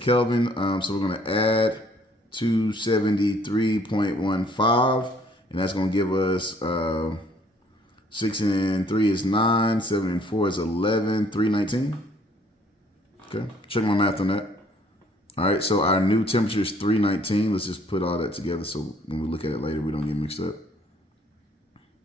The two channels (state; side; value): normal; both; correlation 0.61